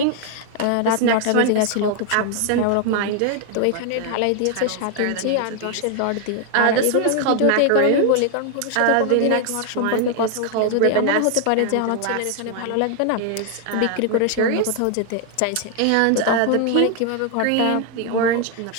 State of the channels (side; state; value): both; different; correlation 0.00